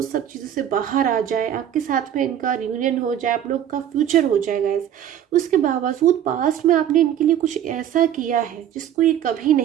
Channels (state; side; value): quieter; left; 10.4 dB